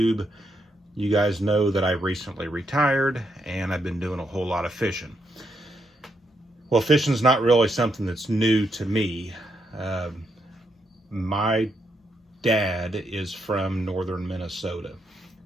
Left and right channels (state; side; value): normal; both; correlation 0.79